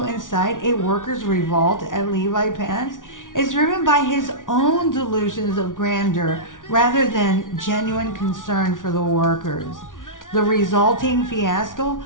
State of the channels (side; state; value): right; late; 0.88 ms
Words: incite a workers' revolt at Levi Pants is driven by his own delusions of grandeur rather than genuine concern for the workers. The resulting fiasco